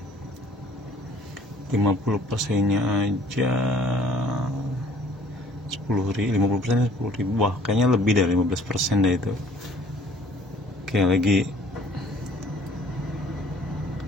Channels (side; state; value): both; normal; correlation 0.56